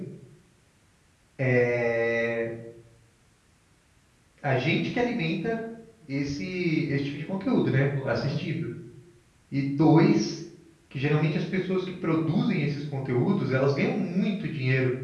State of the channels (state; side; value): identical; both; correlation 1.00